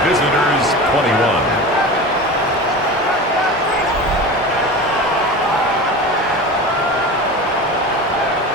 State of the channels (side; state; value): both; normal; correlation 0.31